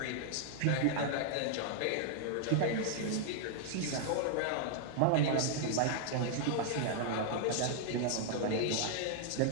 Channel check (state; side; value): different; both; correlation 0.00